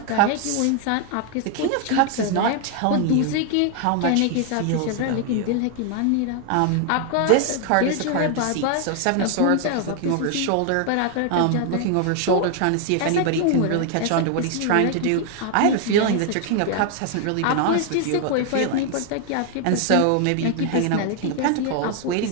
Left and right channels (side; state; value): both; different; correlation 0.00